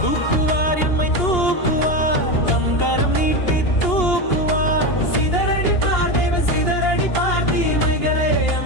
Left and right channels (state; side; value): late; right; 2.8 ms